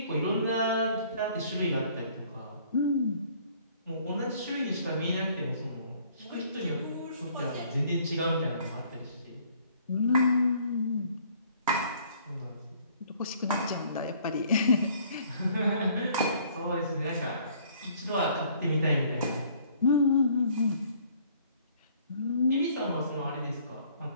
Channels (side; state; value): both; inverted; correlation -0.59